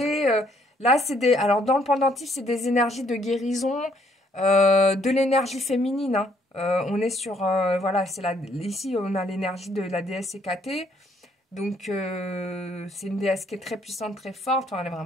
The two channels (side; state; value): both; normal; correlation 0.67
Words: Là, alors dans le pendentif, c'est des énergies de guérison, de l'énergie féminine. Hein. On est sur, voilà, ici on a l'énergie de la déesse Hécaté. Donc c'est une déesse qui est très puissante, très forte. Enfin, elle est